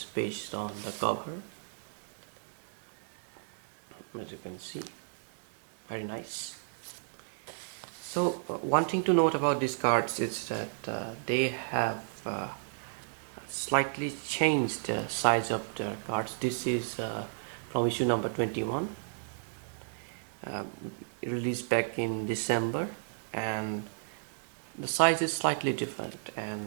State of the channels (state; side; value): silent; left; digital silence